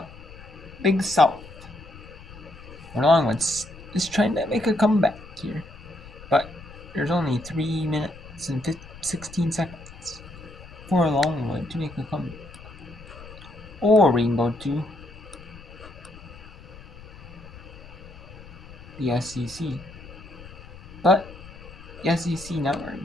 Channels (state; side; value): noise; left; rumble, 17 dB below the sound